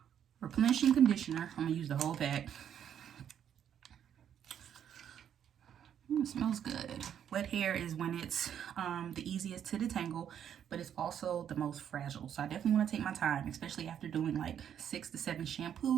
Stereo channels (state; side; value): quieter; left; 9.2 dB